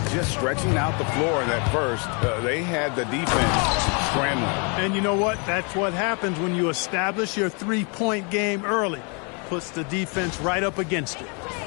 Just stretching out the floor in that first, they had the defense scrambling. And you know what? That's what happens when you establish your three-point game early. Puts the defense right up against it.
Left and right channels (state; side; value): quieter; right; 35.3 dB